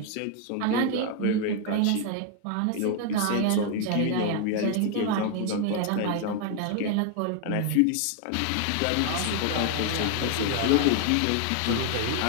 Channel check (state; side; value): different; both; correlation 0.00